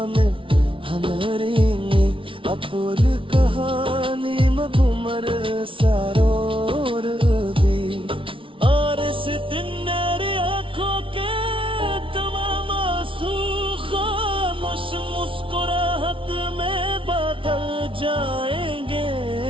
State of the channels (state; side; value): late; left; 0.25 ms